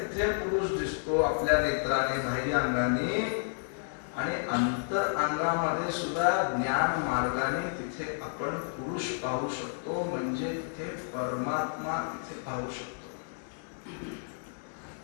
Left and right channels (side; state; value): right; silent; digital silence